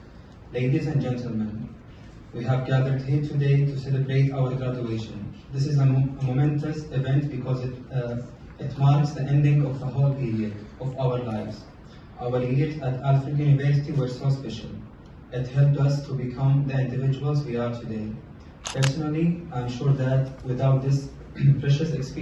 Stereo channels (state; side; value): identical; both; correlation 1.00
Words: ladies and gentlemen, we have gathered here today to celebrate our graduation. This is a momentous event because it marks the ending of a whole period of our lives. Our years at Alfred University were so special. It helped us to become the individuals we are today. Personally, I'm sure that without this precious